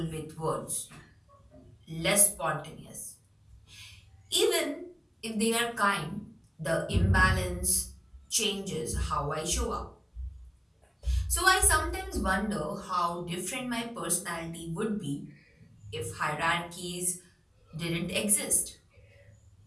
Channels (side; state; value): both; identical; correlation 1.00